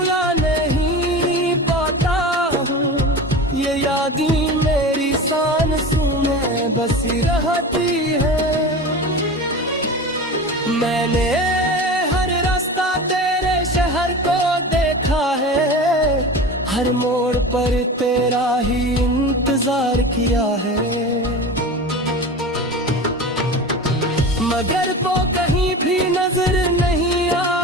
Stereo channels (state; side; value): normal; both; correlation 0.31